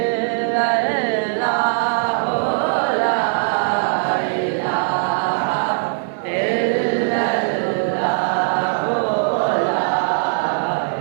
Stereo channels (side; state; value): left; silent; 60 dB below the other